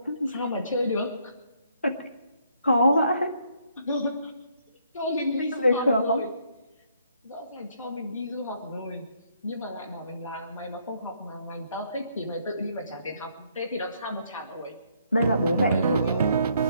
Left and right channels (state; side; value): inverted; both; correlation -0.69